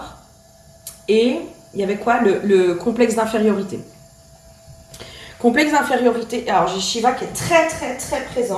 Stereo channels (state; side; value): identical; both; correlation 1.00